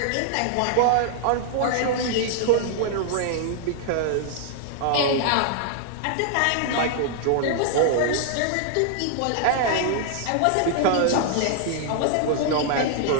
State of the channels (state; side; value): different; both; correlation -0.01